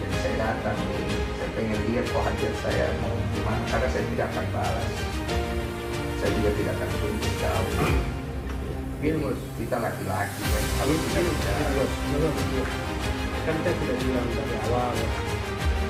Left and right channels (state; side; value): identical; both; correlation 1.00